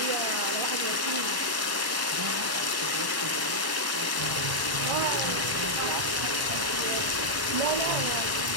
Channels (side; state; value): left; late; 1.1 ms